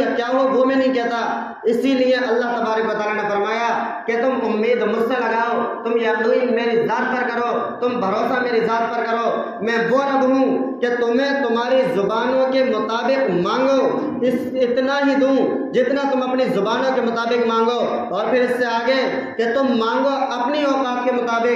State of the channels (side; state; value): both; identical; correlation 1.00